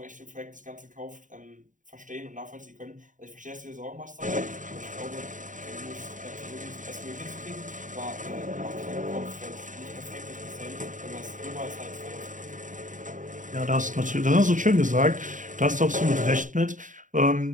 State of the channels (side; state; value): left; late; 0.37 ms